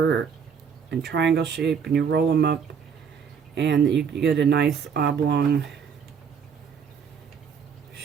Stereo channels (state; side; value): quieter; left; 6.8 dB